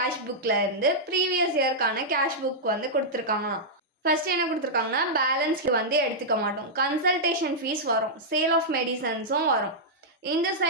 புக்கில் இருந்து ப்ரீவியஸ் இயர்க்கான கேஷ் புக் வந்து கொடுத்துருக்காங்களாம். ஃபர்ஸ்ட் என்ன கொடுத்துருக்காங்கன்னா, பேலன்ஸ்க்கு வந்து எடுத்துக்க மாட்டோம், கன்சல்டேஷன் ஃபீஸ் வரும், சேல் ஆஃப் மெடிசன்ஸும் வரும், இந்த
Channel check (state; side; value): normal; both; correlation -0.09